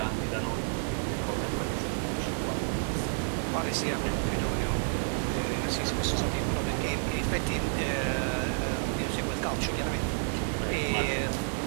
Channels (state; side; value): silent; left; 58 dB below the other